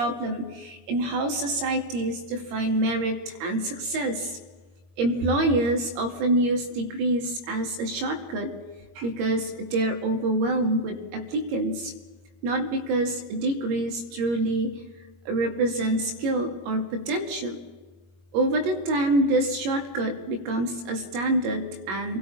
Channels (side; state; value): left; late; 21 ms